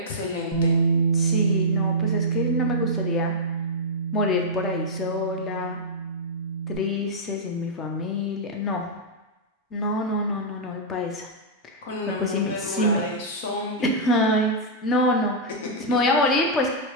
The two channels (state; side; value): normal; both; correlation -0.10